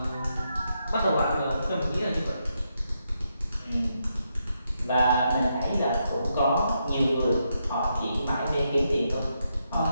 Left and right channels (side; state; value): both; inverted; correlation -0.81